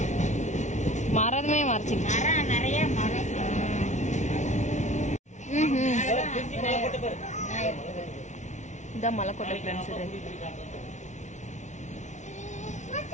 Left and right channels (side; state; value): right; late; 0.34 ms